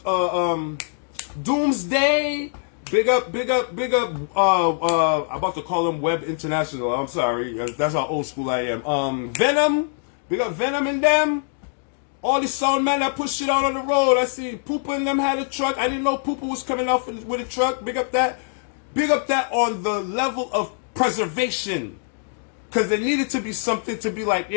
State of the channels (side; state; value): right; silent; digital silence